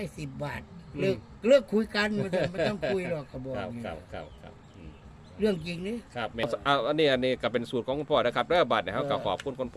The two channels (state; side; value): identical; both; correlation 1.00